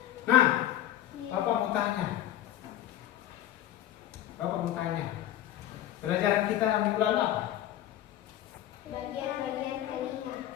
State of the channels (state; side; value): quieter; right; 12.7 dB